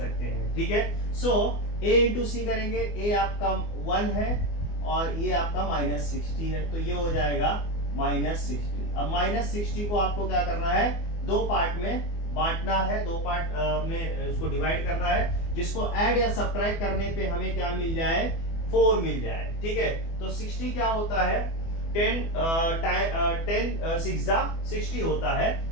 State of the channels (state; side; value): late; right; 24 ms